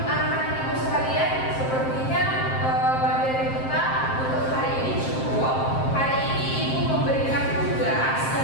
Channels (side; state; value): right; late; 7.6 ms